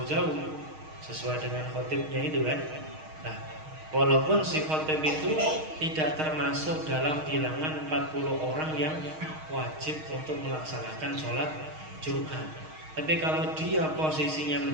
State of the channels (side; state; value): left; late; 6.4 ms